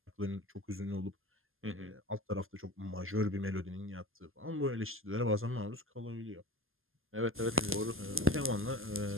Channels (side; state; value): left; late; 0.60 ms